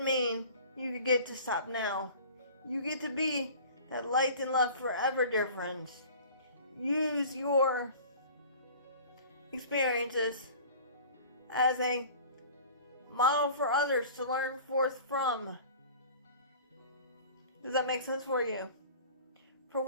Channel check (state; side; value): inverted; both; correlation -0.43